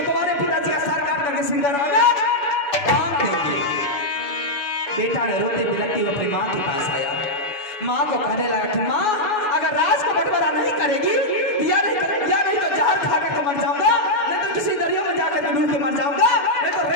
तुम्हारे पिताजी का सर काट करके सिंगराना काम देंगे। बेटा ने रोते बिलखते हुए अपनी माँ के पास आया। माँ को कहने लगा कि माँ, अगर राज को बंटवारा नहीं करेगी या नहीं तो जहर खा करके मर जाऊंगा, नहीं तो किसी दरिया में जाकर के डूब के मर जाऊंगा, नहीं तो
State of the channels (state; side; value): late; right; 7.0 ms